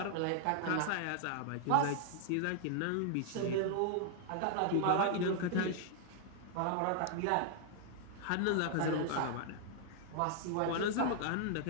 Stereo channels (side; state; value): both; different; correlation 0.00